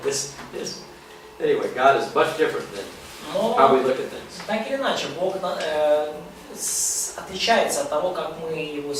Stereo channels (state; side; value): identical; both; correlation 1.00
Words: Anyway, God is much different than Но how we look at things. так или иначе, Бог отличается от того, как мы его